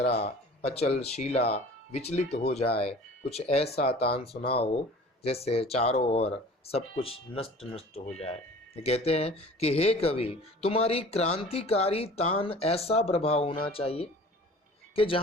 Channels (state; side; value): normal; both; correlation 0.44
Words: अचल शिला विचलित हो जाए, कुछ ऐसा तान सुनाओ जैसे चारों ओर सब कुछ नष्ट नष्ट हो जाए। कहते हैं कि हे कवि, तुम्हारी क्रांतिकारी तान ऐसा प्रभाव होना चाहिए कि